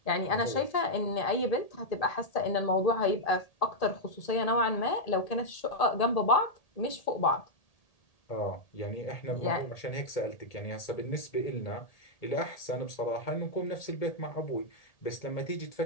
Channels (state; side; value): late; right; 1.8 ms